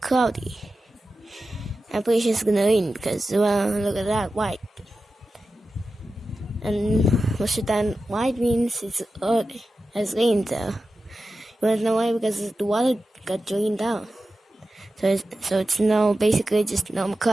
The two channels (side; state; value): both; normal; correlation 0.92